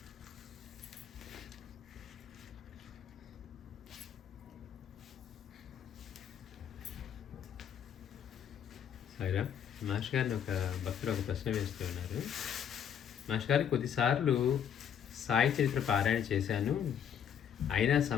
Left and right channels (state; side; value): quieter; right; 8.6 dB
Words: సాయిరా మాస్టర్ గారిని ఒక భక్తులు ఒక ప్రశ్న వేస్తూ ఉన్నారు. మాస్టర్ గారు, కొద్దిసార్లు సాయి చరిత్ర పారాయణ చేశాను, అయినా